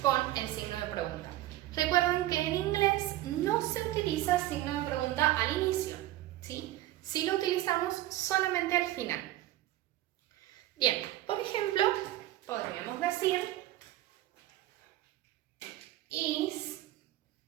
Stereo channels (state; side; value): quieter; left; 15.2 dB